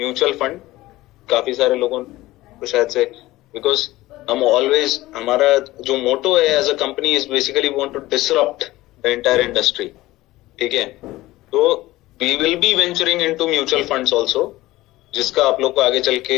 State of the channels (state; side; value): quieter; right; 17.8 dB